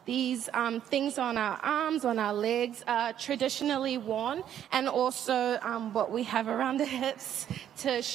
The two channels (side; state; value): left; quieter; 10.3 dB